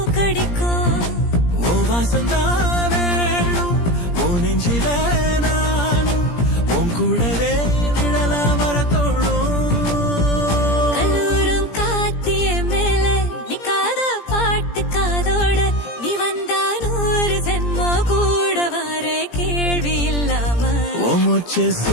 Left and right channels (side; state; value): right; late; 17 ms